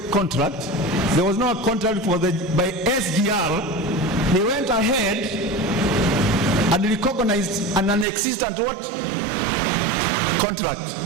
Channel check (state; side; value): drops out; left; at 8.1 s